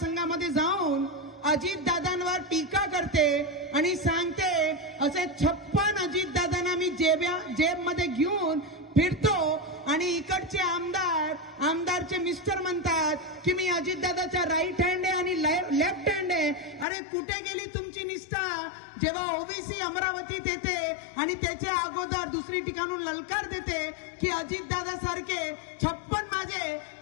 जाऊन अजितदादांवर टीका करते आणि सांगते असे 56 अजितदादांना मी जेबमध्ये घेऊन फिरतो आणि इकडचे आमदारचे मिस्टर म्हणतात की मी अजितदादाचा राईट हँड आहे आणि लेफ्ट हँड आहे। अरे कुठे गेली तुमची निष्ठा? जेव्हा ओबीसी अमरावतीत येते आणि त्याच्या अगोदर दुसरी ठिकाणून ललकार देते की अजितदादा सारखे 56 माझे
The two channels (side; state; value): right; drops out; at 16.9 s